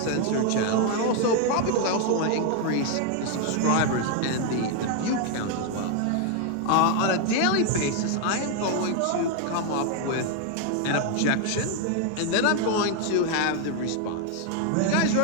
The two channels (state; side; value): different; both; correlation 0.00